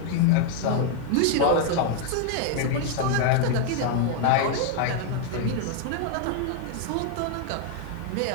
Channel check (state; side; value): different; both; correlation 0.00